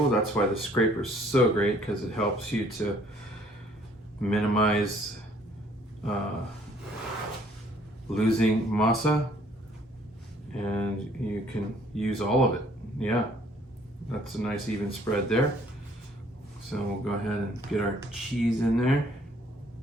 That's why the scraper is so great, because it helps you to minimize losing masa, and you can use all of it. Yeah, that's a nice even spread there. So we'll go ahead and get our cheese in there.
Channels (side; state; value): both; normal; correlation 0.61